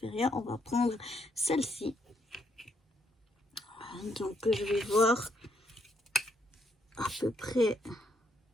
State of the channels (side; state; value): both; normal; correlation 0.74